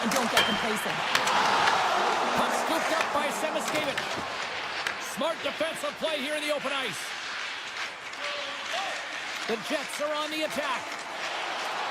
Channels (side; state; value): both; identical; correlation 1.00